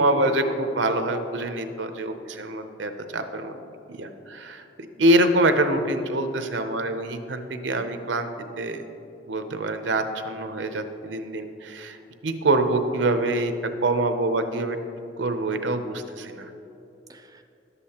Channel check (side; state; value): both; normal; correlation 0.10